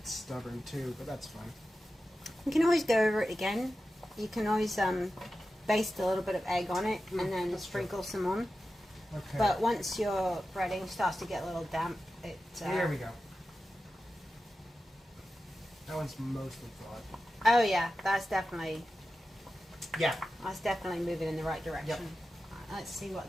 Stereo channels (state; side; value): normal; both; correlation 0.93